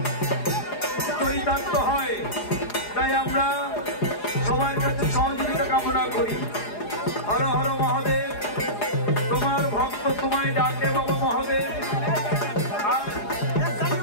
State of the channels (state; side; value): late; right; 4.8 ms